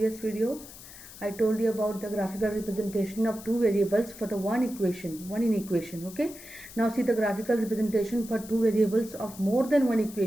video I told you about the graphical representation of two variables for the one in equation. Okay, now see the graphical representation for two variables of more than one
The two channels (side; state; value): left; noise; hiss, 16 dB below the sound